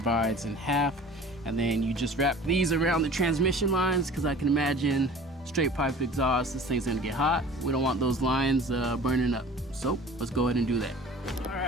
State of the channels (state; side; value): normal; both; correlation 0.44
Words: in half. And then you just wrap these around the transmission lines, because I can imagine straight pipe exhaust, this thing's gonna get hot. We don't want those lines burning up. So let's go ahead and do that. All